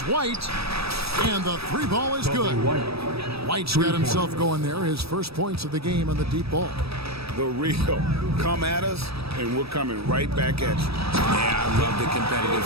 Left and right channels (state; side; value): late; left; 0.78 ms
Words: White. And the 3 ball is good. White's got himself going there. His first points of the game on the deep ball. The real. Come at us, and we're coming right back at you. Yeah, I love the competitive